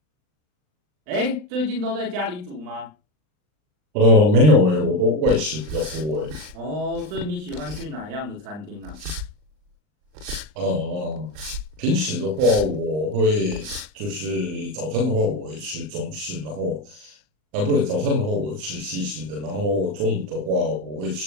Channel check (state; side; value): late; left; 39 ms